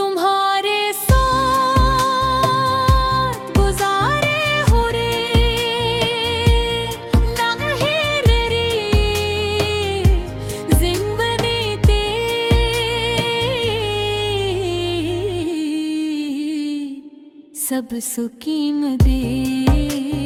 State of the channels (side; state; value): both; identical; correlation 1.00